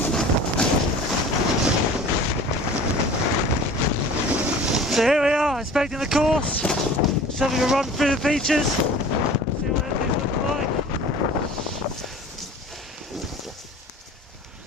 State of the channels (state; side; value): normal; both; correlation 0.43